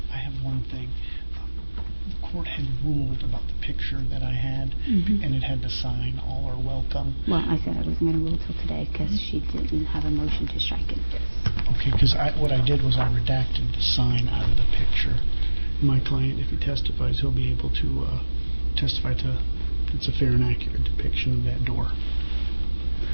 I have one thing. The court had ruled about the picture that I had, and it had the sign, "All are welcome." Well, I said I wasn't going to rule till today because she didn't have a motion to strike it. Okay, because what I did was I redacted the sign out of the picture. My client, if he testifies, he'll be able to testify to it's a fair and accurate depiction of that door.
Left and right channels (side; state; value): both; inverted; correlation -1.00